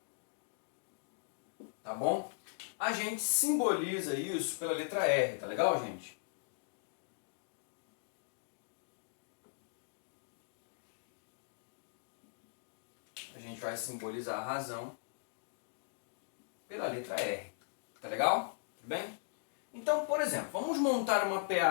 tá bom? A gente simboliza isso pela letra R, tá legal, gente? A gente vai simbolizar a razão pela letra R, tá legal? Tudo bem? Então, por exemplo, vamos montar uma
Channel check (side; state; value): right; silent; digital silence